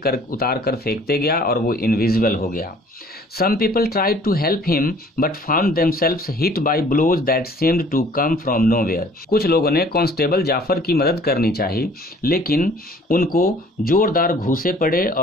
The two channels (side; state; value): both; normal; correlation 0.54